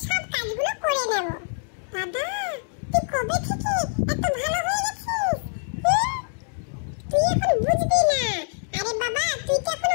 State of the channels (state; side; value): silent; right; 57 dB below the other